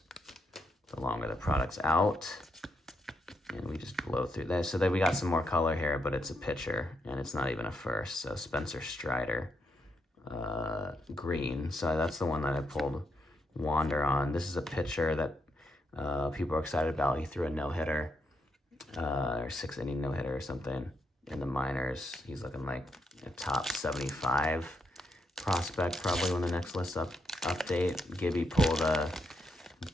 The longer the product's out. And we just blow through this. So then we got some more color here, but it's a pitcher and it's not even a first. So Spencer Strider, green. So that's the one that I pulled Wander on. This is a pitcher that people are excited about. He threw a no-hitter, or 6-inning no-hitter or something in the minors. He's looking like a top 75 prospect probably when the next list update. Gibby pulled a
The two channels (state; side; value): normal; both; correlation 0.80